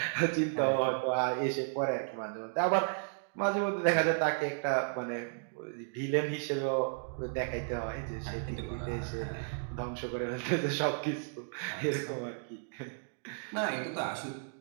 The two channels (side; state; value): left; silent; digital silence